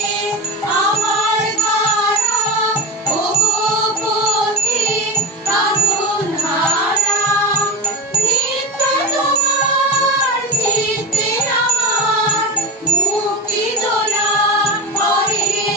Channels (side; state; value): both; normal; correlation 0.24